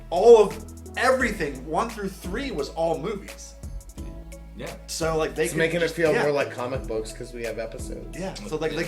all of everything 1 through 3 was all movies. Yeah. So like they It's could making just, it feel yeah. more like comic books because we have episodes. Yeah. So like they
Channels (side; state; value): both; identical; correlation 1.00